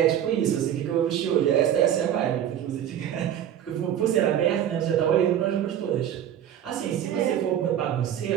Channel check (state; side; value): quieter; left; 10.3 dB